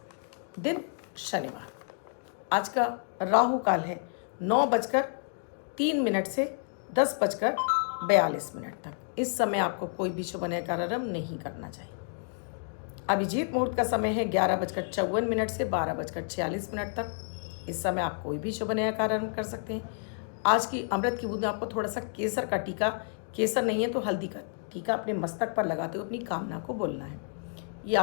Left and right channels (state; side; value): silent; right; 58 dB below the other